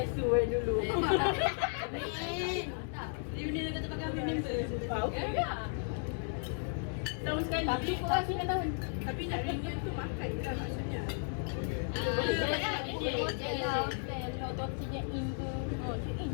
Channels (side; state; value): right; silent; 55 dB below the other